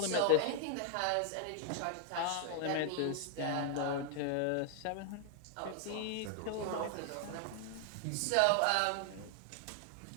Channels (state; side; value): different; both; correlation 0.00